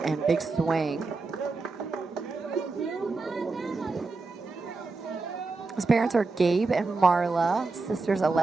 and big swing. His parents are Gabe and Marla, sisters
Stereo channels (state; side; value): quieter; left; 3.9 dB